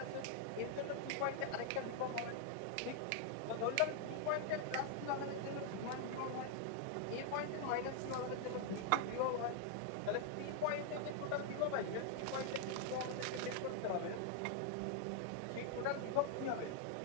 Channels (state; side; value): different; both; correlation 0.00